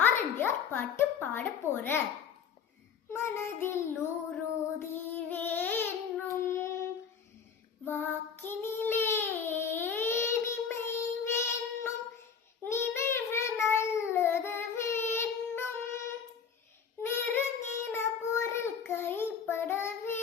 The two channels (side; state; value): right; quieter; 6.7 dB